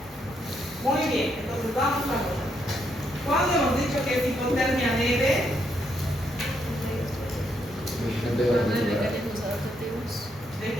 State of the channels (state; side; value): normal; both; correlation 0.76